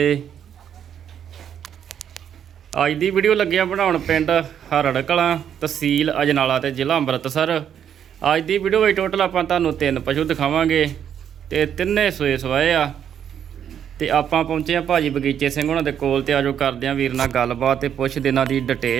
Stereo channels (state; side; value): quieter; left; 9.0 dB